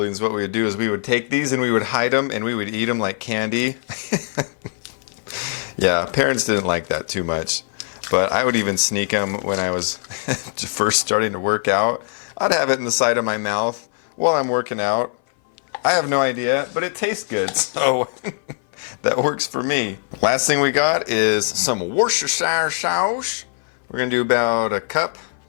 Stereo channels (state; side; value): silent; right; 59 dB below the other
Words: what we would do is we would take these and we would hide them and we would eat them like candy. Yeah, parents didn't like that too much, but I would even sneak them when I was first starting to work out. I'd have it in the side of my mouth while I'm working out. I have no idea, but it tastes good, so that works for me. Last thing we got is some Worcestershire sauce. We're gonna do about a cup,